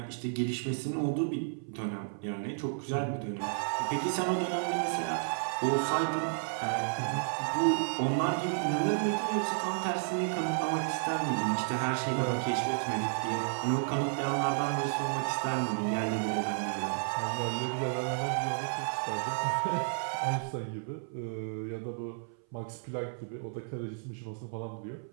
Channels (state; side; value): silent; left; 56 dB below the other